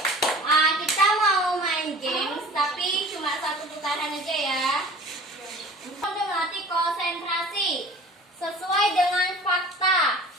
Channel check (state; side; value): normal; both; correlation 0.43